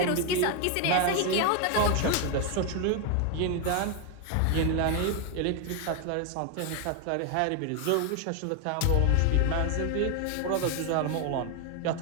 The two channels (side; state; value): both; different; correlation 0.01